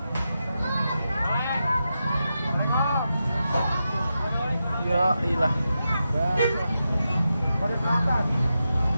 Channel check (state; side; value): inverted; both; correlation -0.88